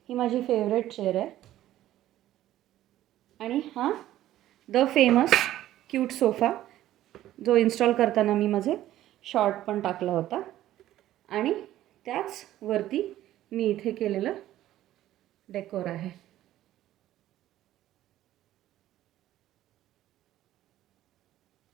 ही माझी फेवरेट चेअर आहे. आणि हा द फेमस क्यूट सोफा जो इन्स्टॉल करताना मी माझे शॉर्ट पण टाकला होता. आणि त्याच वरती मी इथे केलेलं डेकोर आहे.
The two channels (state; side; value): quieter; left; 13.6 dB